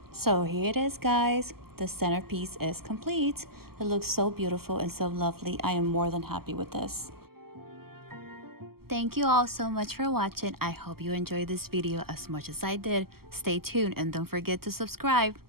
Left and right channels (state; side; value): late; left; 0.95 ms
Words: So here it is, guys. The centerpiece is complete. It looks so beautiful and so lovely. I am more than happy with this. Thank you all so much for watching. I hope you enjoyed this video as much as I did. Stay tuned and don't forget to subscribe.